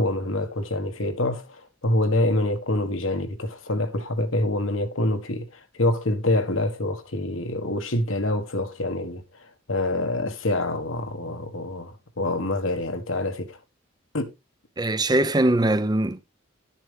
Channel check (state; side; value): normal; both; correlation 0.36